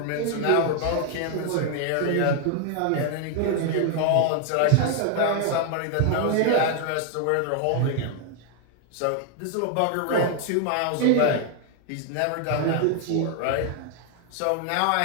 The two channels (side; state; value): both; different; correlation 0.00